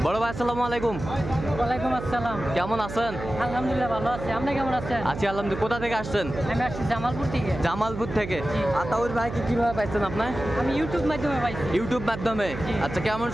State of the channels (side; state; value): right; noise; hum, 9 dB below the sound